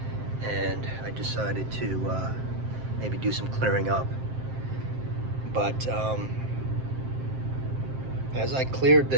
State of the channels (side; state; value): left; late; 7.6 ms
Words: and I decided to maybe do some clearing up. But as I cleared